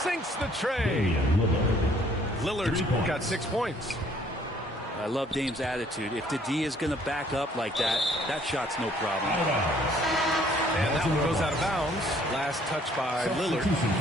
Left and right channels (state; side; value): normal; both; correlation 0.61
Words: Sinks the tray. Lillard's got 6 points. I love Dame's attitude. If the D is going to back up like that, that shot's no problem. And that one goes out of bounds. Last touch by Lillard.